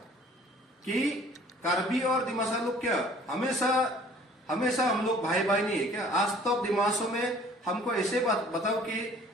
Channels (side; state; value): both; normal; correlation 0.53